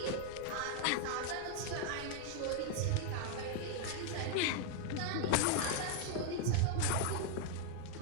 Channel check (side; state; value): both; different; correlation 0.00